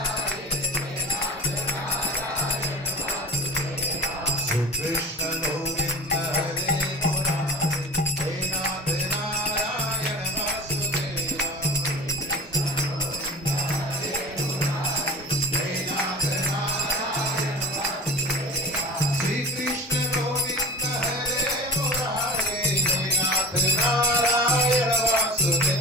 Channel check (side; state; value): both; normal; correlation 0.36